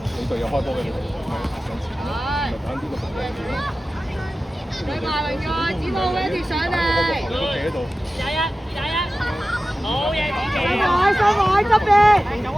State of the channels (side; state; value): both; normal; correlation 0.95